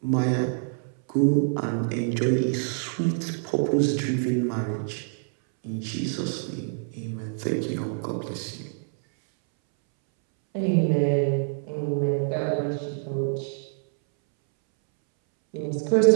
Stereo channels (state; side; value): silent; left; 61 dB below the other